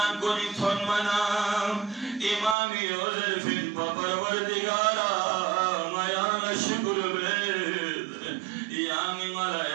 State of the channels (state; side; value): drops out; left; at 2.6 s